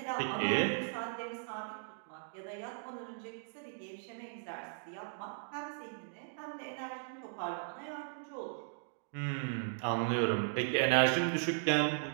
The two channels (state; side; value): silent; left; digital silence